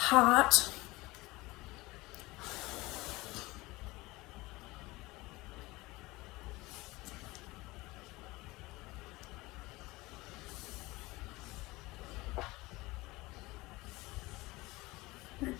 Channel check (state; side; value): quieter; right; 21.1 dB